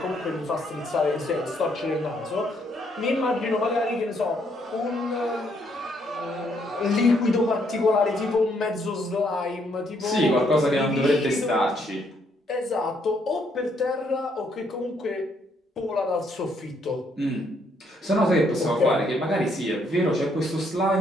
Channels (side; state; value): both; normal; correlation 0.71